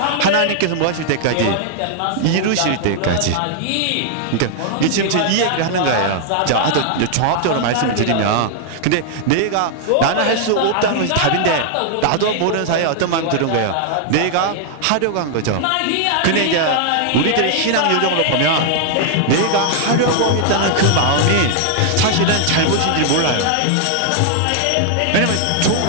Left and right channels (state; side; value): different; both; correlation 0.00